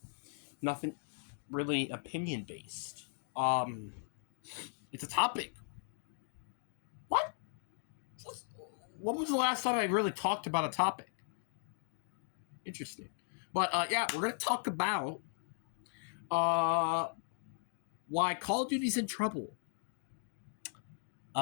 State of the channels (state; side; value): silent; right; digital silence